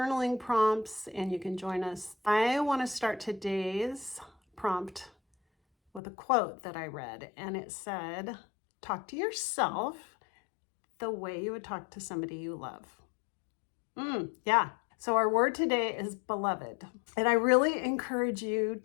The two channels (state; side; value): drops out; right; at 6.0 s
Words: prompts and you can join us. I want to start today's prompt with a quote that I read, and it said, talk to yourself the way you would talk to somebody you love. Yeah. So our word today is beloved. And I really encourage you